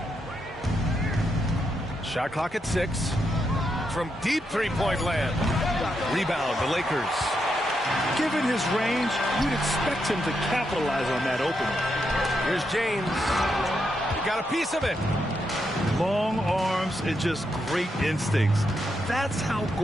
Shot clock at 6. From deep three-point land. Rebound, the Lakers. Given his range, you'd expect him to capitalize on that opening. Here's James. He got a piece of it. Long arms and just great instincts. That's how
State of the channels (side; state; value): both; normal; correlation 0.82